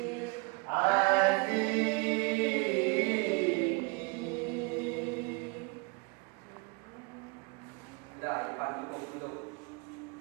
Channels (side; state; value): left; quieter; 30.4 dB